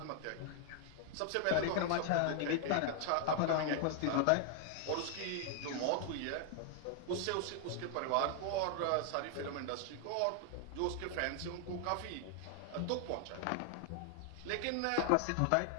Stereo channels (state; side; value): different; both; correlation 0.00